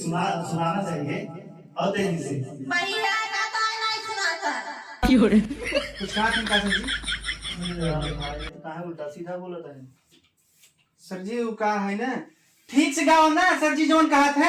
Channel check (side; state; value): both; identical; correlation 1.00